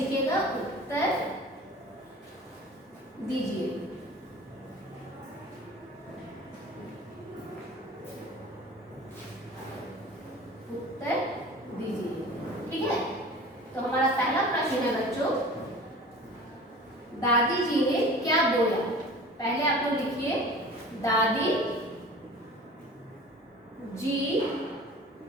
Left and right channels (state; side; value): normal; both; correlation 0.41